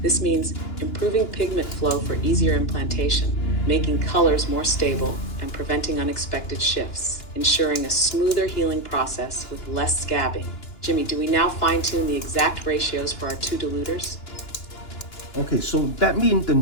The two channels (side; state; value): right; late; 2.9 ms